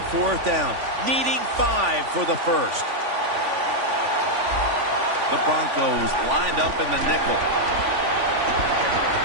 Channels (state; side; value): late; left; 3.5 ms